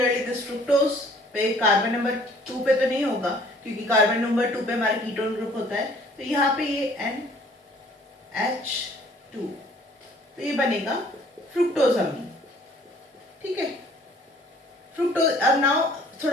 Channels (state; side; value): normal; both; correlation 0.56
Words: this fructose पे कार्बन नंबर 2 पे तो नहीं होगा क्योंकि कार्बन नंबर 2 पे हमारा कीटोन ग्रुप होता है, तो यहाँ पे ये NH2 तो ये बनेगा फ्रुक्टोजामीन। ठीक है, फ्रुक्टोज। अब नाउ